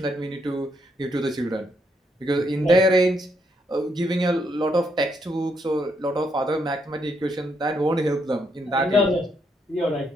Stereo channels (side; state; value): both; normal; correlation 0.76